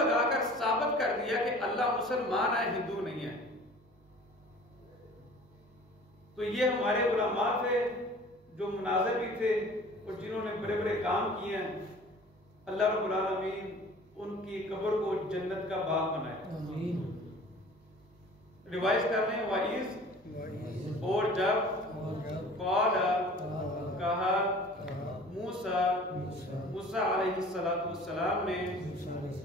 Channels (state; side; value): normal; both; correlation 0.46